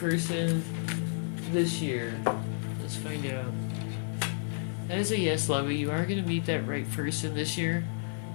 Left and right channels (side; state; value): right; silent; 57 dB below the other